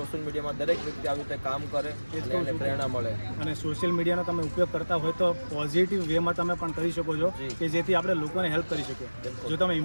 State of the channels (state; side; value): inverted; both; correlation -1.00